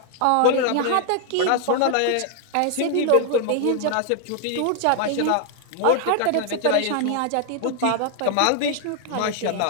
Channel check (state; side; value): different; both; correlation 0.00